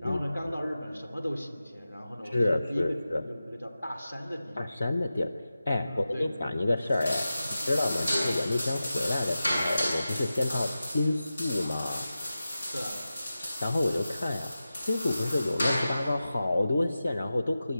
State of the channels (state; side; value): inverted; both; correlation -0.94